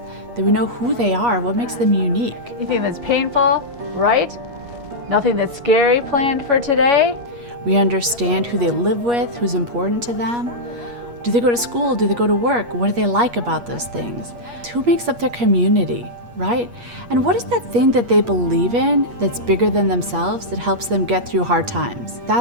that we know who they are, what makes them unique. Anything that's painful, right? Nothing that's scary planned for today? We understand who they live with, who's important to them. Do they go to school? Do they go to work? What do they like about those things? Who makes up their community, right? And what is that thing that they believe in that's bigger than themselves that helps them get through hard times?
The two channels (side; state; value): left; late; 8.4 ms